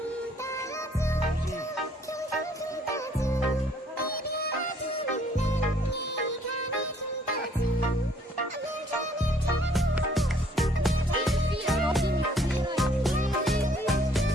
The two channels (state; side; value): normal; both; correlation 0.62